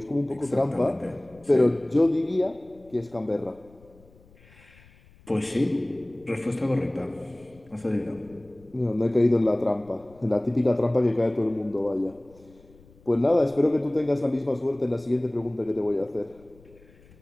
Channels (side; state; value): left; noise; rumble, 27 dB below the sound